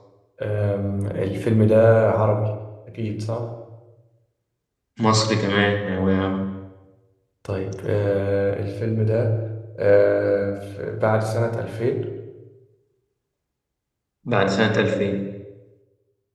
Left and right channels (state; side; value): identical; both; correlation 1.00